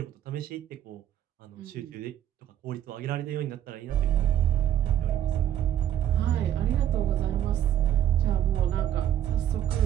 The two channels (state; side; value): quieter; left; 11.0 dB